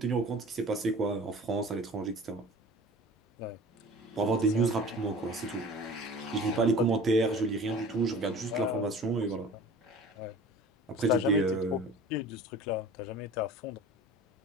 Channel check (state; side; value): normal; both; correlation 0.43